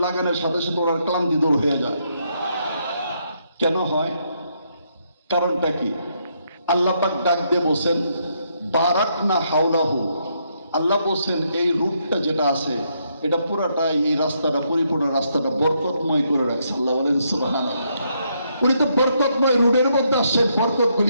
লাগানোর সাথে সাথে ওনার ক্লান্তি দূর হয়ে যায়। কেন হয়? কারণটা কি? আল্লাহ পাক ডাক দিয়ে বলছেন বারাকনা হাওলাহু। আল্লাহ বলছেন এই রূপটা যেটা আছে, এটা পুরাটাই, এই রাস্তাটা, পরিপূর্ণ রাস্তাটা বরকতময় করে রাখছে। আল্লাহ বলেন সুবহানাল্লাহ। উনি তো বরকতময় রোডের মধ্যে আসছেন,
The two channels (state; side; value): inverted; both; correlation -0.76